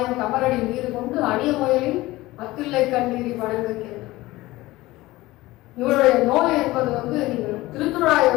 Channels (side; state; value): right; quieter; 18.7 dB